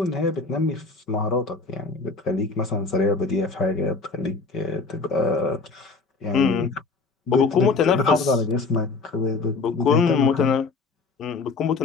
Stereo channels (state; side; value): quieter; right; 4.1 dB